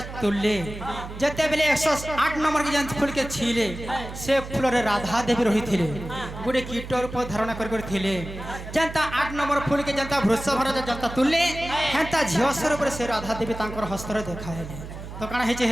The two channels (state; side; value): noise; right; hum, 11 dB below the sound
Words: তুললে যেতেবেলে 108 নম্বর के যেন ফুলকে ছিলে সে ফুলরে রাধা দেবী রহিଥିଲେ গোটে কীট রূপ ধারণা করে ଥିଲେ যেনতা 8 নম্বর ফুলকে যেনতা বৃষভর যেনতা তুললে হেনতা ঝিও স্বরূপে সে রাধা দেবী তাঙ্কর হস্তরে দেখাইলে তো কাଣା হেছে